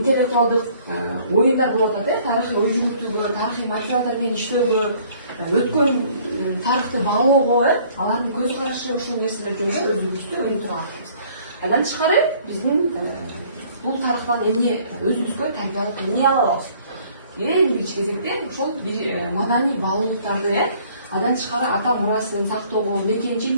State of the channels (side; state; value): both; inverted; correlation -0.58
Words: оюндар болуп атат, тарыхый ой жүгүртүүгө, тарыхый материалдар менен иштөөгө, өткөн тарыхты баалоого, алардын көз карашы ушул нерселер жөнүндө өзүбүздү өнүктүрүп атабыз. Андан тышкары биздин бул тарыхтан эмне өзүбүзгө тарбиялык эмне ала алабыз? Эң биринчи кезекте ошол маданий баалуулуктарды, андан тышкары ата мурасын сактоого,